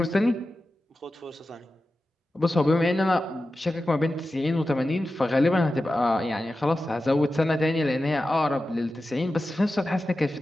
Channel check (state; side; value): normal; both; correlation 0.93